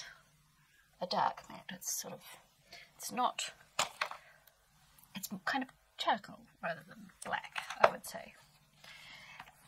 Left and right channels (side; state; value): both; identical; correlation 1.00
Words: a dark matte. It's kind of charcoal rather than black, I would say.